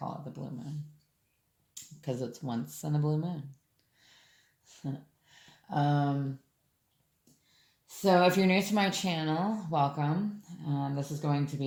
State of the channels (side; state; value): both; identical; correlation 1.00